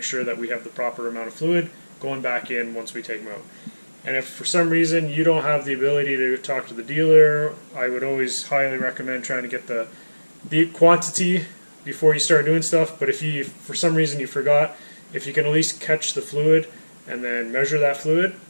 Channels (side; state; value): both; inverted; correlation -1.00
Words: sure that we have the proper amount of fluid going back in once we take them out. And if for some reason you don't have the ability to talk to the dealer, I would always highly recommend trying to get the quantity before you start doing stuff. But if you, for some reason you forgot, if you can at least catch the fluid and then measure that fluid,